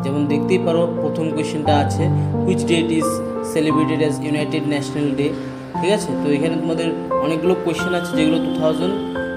যেমন দেখতেই পারো, প্রথম কোয়েশ্চেনটা আছে which date is celebrated as United National Day. ঠিক আছে, তো এখানে তোমাদের অনেকগুলো কোয়েশ্চেন আছে যেগুলো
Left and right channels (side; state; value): both; identical; correlation 1.00